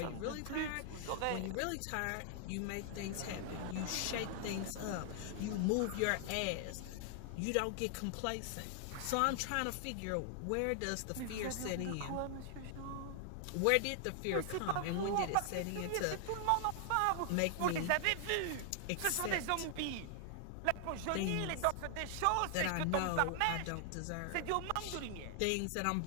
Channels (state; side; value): different; both; correlation 0.00